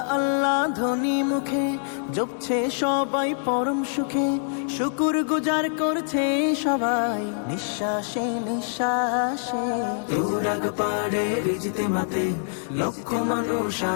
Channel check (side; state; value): right; silent; 62 dB below the other